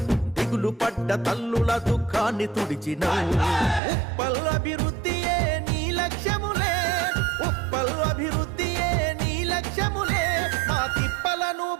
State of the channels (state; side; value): drops out; left; at 3.8 s